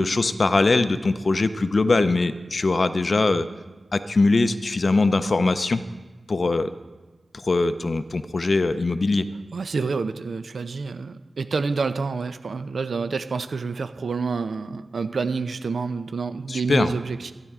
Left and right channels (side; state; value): both; normal; correlation 0.94